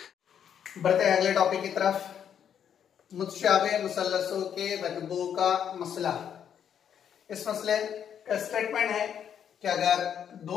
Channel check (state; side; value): quieter; right; 8.7 dB